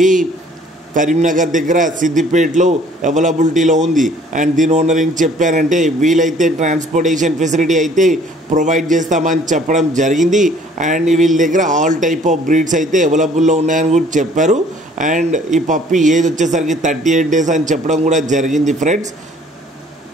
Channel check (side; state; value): both; normal; correlation 0.57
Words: కరీంనగర్ దగ్గర సిద్దిపేటలో అవైలబిలిటీలో ఉంది. అండ్ దీని ఓనర్ ఏం చెప్పారంటే, వీలైతే ట్రాన్స్పోర్టేషన్ ఫెసిలిటీ అయితే ప్రొవైడ్ చేస్తామని చెప్పడం జరిగింది. అండ్ వీళ్ళ దగ్గర ఆల్ టైప్ ఆఫ్ బ్రీడ్స్ అయితే అవైలబుల్లో ఉన్నాయని కూడా చెప్పారు. అండ్ ఈ పప్పీ ఏజ్ వచ్చేసరికి 38 days అని చెప్పడం కూడా జరిగింది. Friends,